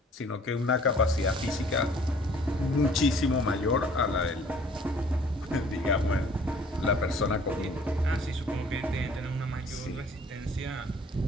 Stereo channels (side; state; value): both; normal; correlation 0.55